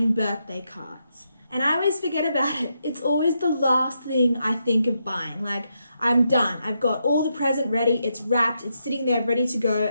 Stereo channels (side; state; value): both; inverted; correlation -0.82